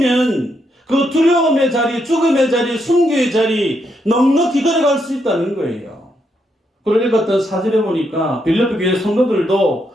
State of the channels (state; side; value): normal; both; correlation 0.79